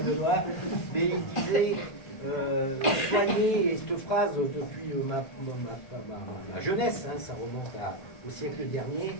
là, mais il disait soyez, et cette phrase depuis ma jeunesse, ça remonte au siècle dernier,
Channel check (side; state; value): right; late; 1.5 ms